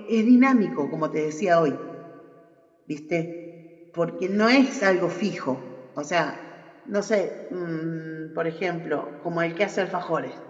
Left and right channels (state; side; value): identical; both; correlation 1.00